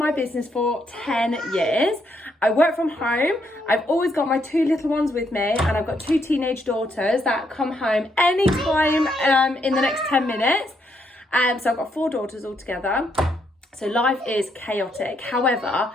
business for 10 years. I work from home. I've always got my 2 little ones with me and I've got 2 teenage daughters that come home anytime in the next 10 minutes. So I've got 4 daughters altogether. So life is chaotic. However,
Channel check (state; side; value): normal; both; correlation 0.75